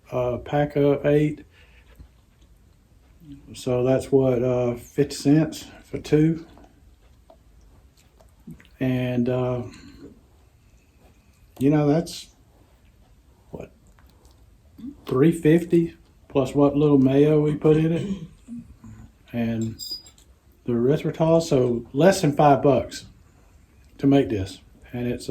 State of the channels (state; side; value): identical; both; correlation 1.00